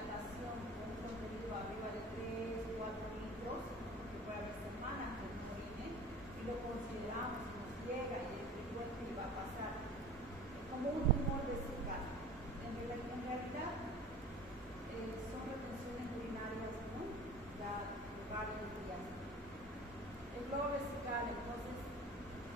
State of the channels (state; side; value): normal; both; correlation 0.42